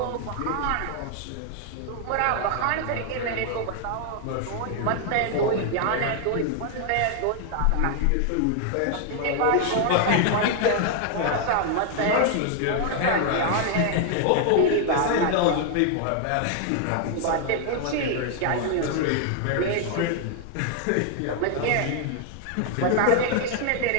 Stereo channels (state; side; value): different; both; correlation 0.00